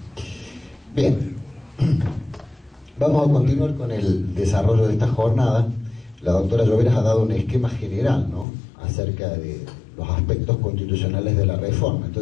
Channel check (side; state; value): right; drops out; at 8.5 s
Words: Bien, vamos a continuar con el desarrollo de esta jornada. La doctora Lloveras ha dado un esquema general, ¿no?, acerca de los aspectos constitucionales de la reforma.